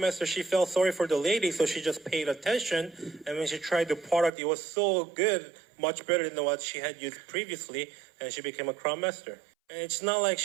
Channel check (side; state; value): left; drops out; at 4.3 s